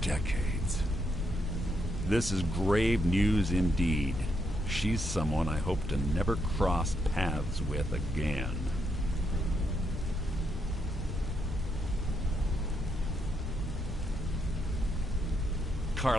decades. This is grave news indeed. She's someone I hope to never cross paths with again.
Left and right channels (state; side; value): normal; both; correlation 0.78